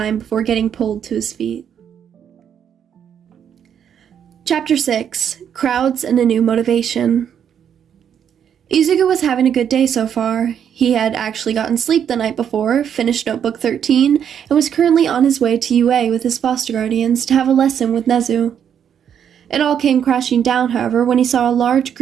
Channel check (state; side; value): quieter; left; 8.6 dB